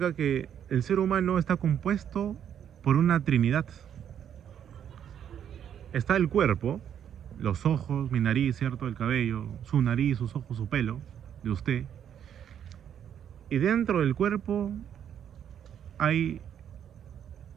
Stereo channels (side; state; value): left; quieter; 9.2 dB